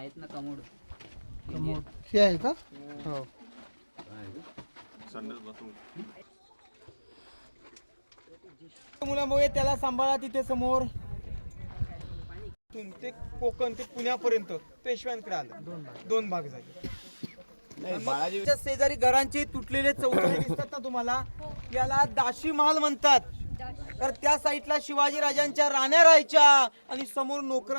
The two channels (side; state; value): both; inverted; correlation -1.00